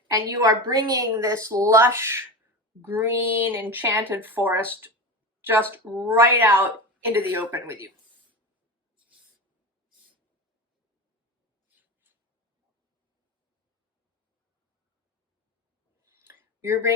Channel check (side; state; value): both; normal; correlation 0.25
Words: And you are bringing this lush, green, enchanted forest just right out into the open with you. You're